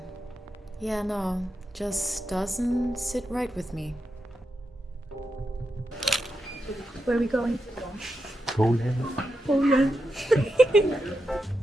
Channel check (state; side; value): normal; both; correlation 0.87